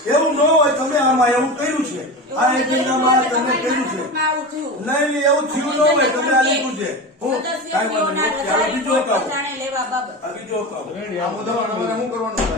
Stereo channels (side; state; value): both; normal; correlation 0.26